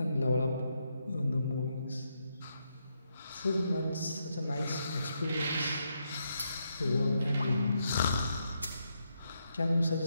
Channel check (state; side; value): inverted; both; correlation -0.81